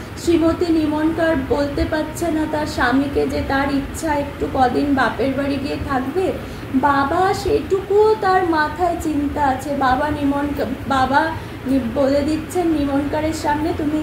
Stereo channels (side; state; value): both; identical; correlation 1.00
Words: শ্রীমতী নিমনকার বলতে পারছে না তার স্বামীকে যে তার ইচ্ছা একটু কদিন বাপের বাড়ি গিয়ে থাকবে, বাবা সেটুকুও তার মাথায় চিন্তা আছে। বাবা বলে দিচ্ছেন নিমনকারের সামনে, তুমি